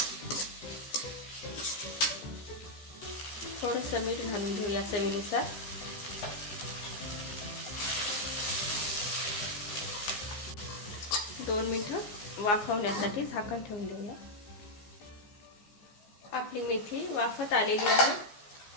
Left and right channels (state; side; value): late; right; 15 ms